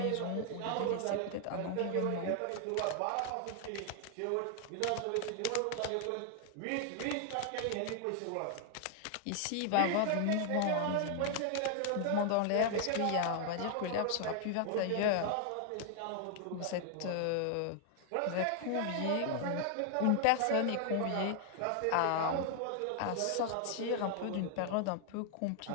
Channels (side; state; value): both; different; correlation 0.00